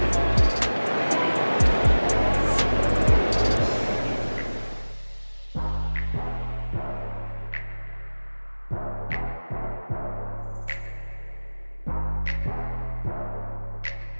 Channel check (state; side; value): inverted; both; correlation -1.00